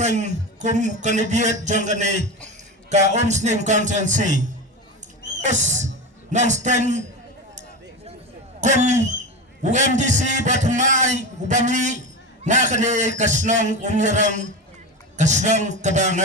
kum kandidat jong kene ka Omsning constituency. Yes, non-stang kum UMDC batmay ubami na kene kasnong umirang kasnong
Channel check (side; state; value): both; normal; correlation 0.23